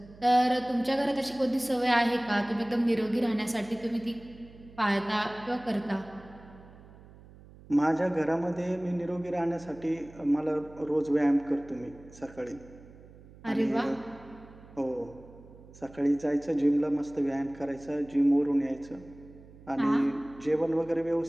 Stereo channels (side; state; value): right; noise; hum, 21 dB below the sound